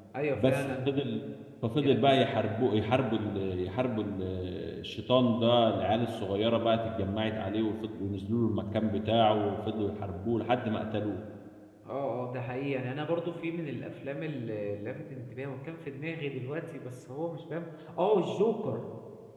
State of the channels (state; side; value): identical; both; correlation 1.00